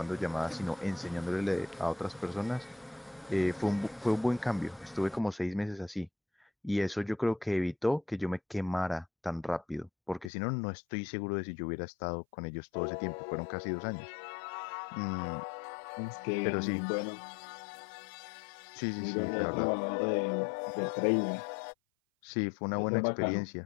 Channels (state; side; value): drops out; right; at 10.3 s